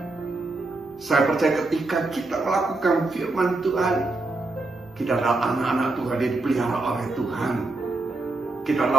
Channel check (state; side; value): quieter; left; 3.1 dB